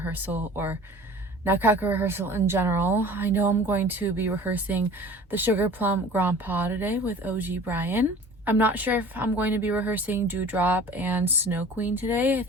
or Nutcracker rehearsal in general. I know I'm going to be rehearsing the sugarplum Grand Pas today with OG Brian. I'm not sure if I'm going to be rehearsing Dewdrop and Snow Queen today. I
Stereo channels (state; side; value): normal; both; correlation 0.44